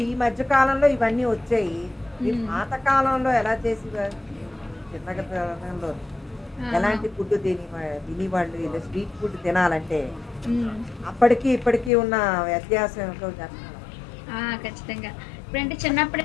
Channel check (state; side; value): drops out; right; at 11.9 s